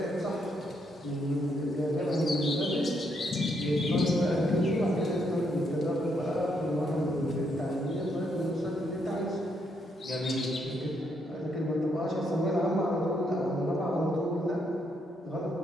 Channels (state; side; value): normal; both; correlation 0.76